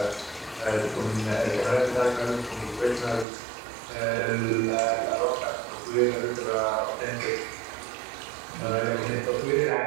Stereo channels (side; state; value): left; drops out; at 3.2 s